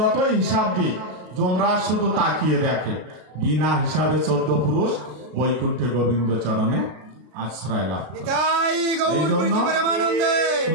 হিসাব দিয়ে যমরাজ শুধু তাকিয়ে দেখে, বিনা হিসাবে 14 পুরুষ বৈকুণ্ঠে গোবিন্দ চরণে আশ্রয় লাভ। এই জন্য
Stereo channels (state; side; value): late; left; 33 ms